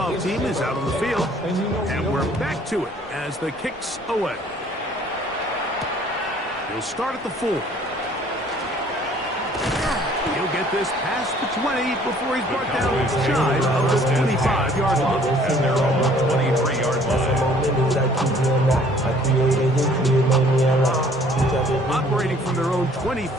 team is out on the field, and we're back to it as the kick's away. He'll start at the 4. He'll get this past the 20 before he's brought down shy of the 25-yard line. At their own 23-yard line. Operating from their own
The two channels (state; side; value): normal; both; correlation 0.57